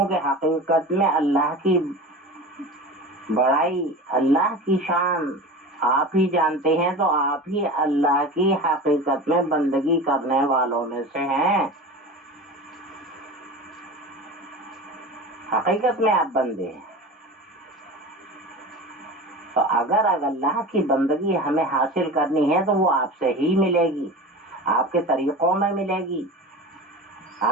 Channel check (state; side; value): normal; both; correlation 0.32